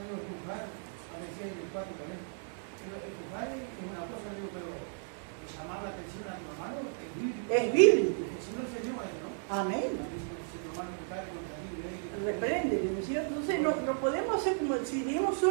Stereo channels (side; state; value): left; silent; 55 dB below the other